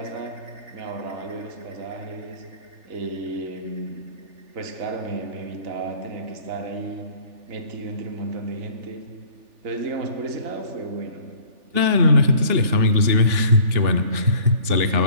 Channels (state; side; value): late; left; 3.4 ms